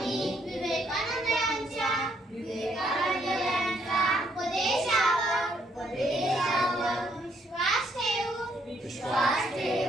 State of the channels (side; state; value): both; normal; correlation 0.71